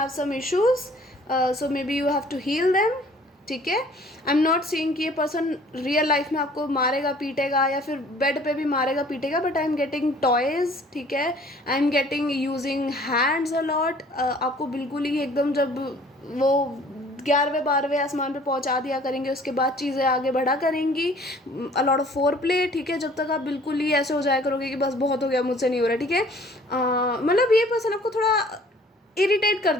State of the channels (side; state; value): both; normal; correlation 0.54